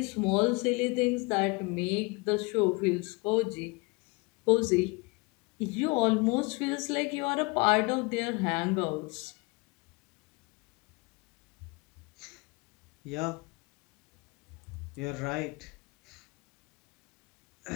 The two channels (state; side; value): quieter; right; 27.7 dB